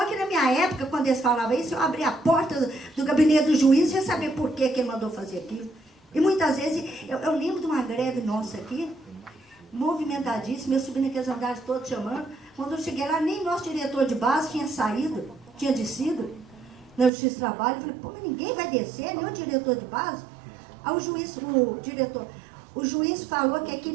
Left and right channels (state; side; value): drops out; left; at 17.1 s